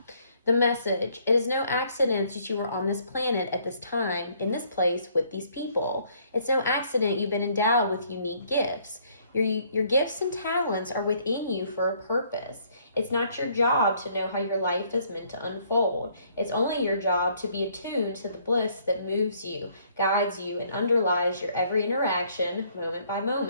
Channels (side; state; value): both; inverted; correlation -0.65